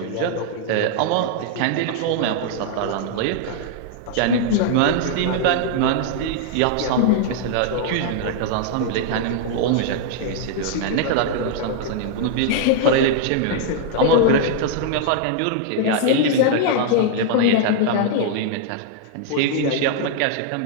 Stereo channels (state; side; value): different; both; correlation -0.01